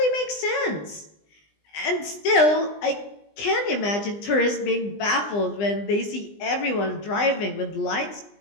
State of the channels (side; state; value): right; late; 20 ms